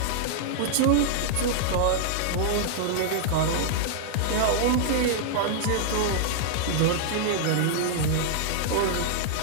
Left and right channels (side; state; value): both; different; correlation -0.01